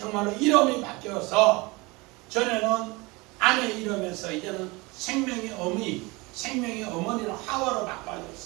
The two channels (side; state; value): left; quieter; 24.7 dB